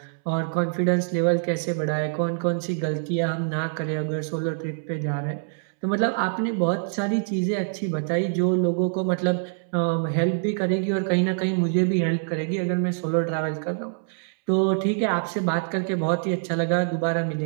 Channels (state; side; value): silent; left; 62 dB below the other